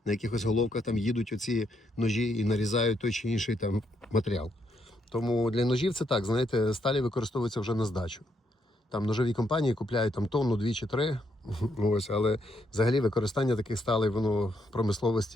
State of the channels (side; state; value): both; normal; correlation 0.76